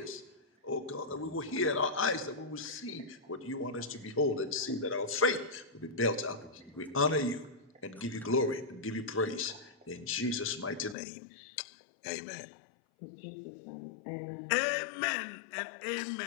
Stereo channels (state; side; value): drops out; right; at 11.0 s